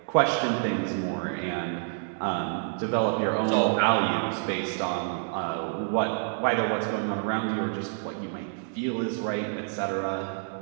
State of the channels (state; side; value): silent; left; digital silence